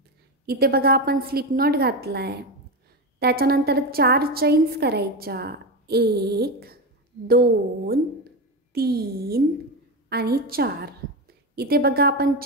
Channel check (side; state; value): both; normal; correlation 0.17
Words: इथे बघा आपण स्लिप नॉट घातला आहे. त्याच्यानंतर 4 चैन्स करायच्या, 1 2 3 आणि 4. इथे बघा आपण